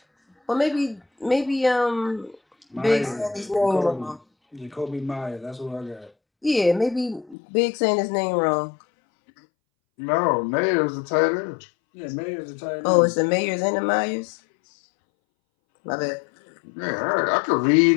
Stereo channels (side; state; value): right; drops out; at 7.4 s